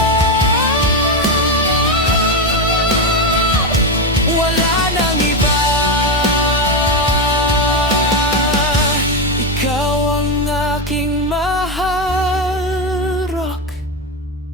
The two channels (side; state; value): both; normal; correlation 0.11